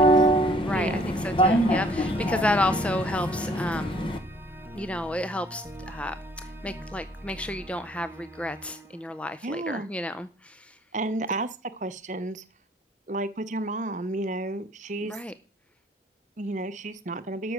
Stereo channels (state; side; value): normal; both; correlation 0.59